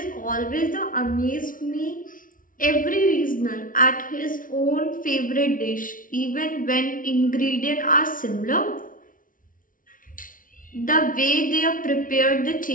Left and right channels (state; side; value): late; right; 0.39 ms